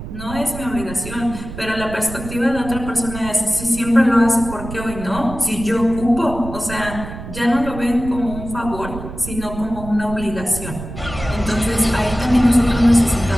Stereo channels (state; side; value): noise; right; rumble, 10 dB below the sound